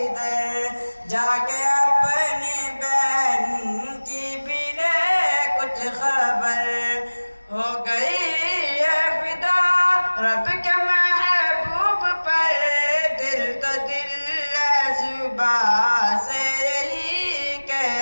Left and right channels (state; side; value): inverted; both; correlation -1.00